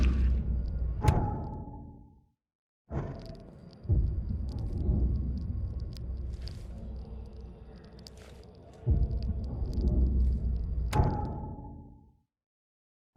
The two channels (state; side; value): identical; both; correlation 1.00